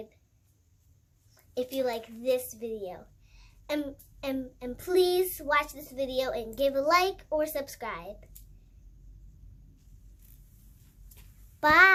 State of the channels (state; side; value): identical; both; correlation 1.00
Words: if you like this video. And please watch this video and give a like or subscribe.